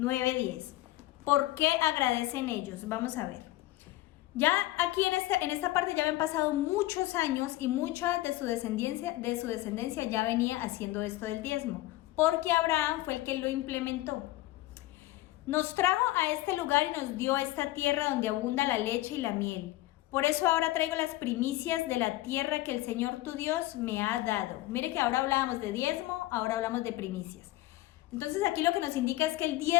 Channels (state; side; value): quieter; right; 17.2 dB